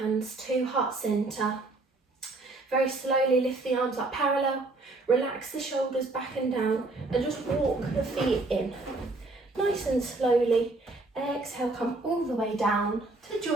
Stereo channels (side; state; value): left; quieter; 3.2 dB